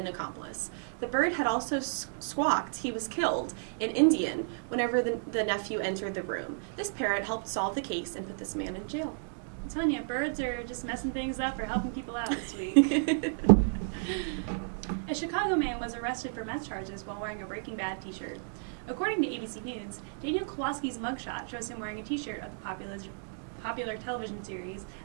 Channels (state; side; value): silent; left; digital silence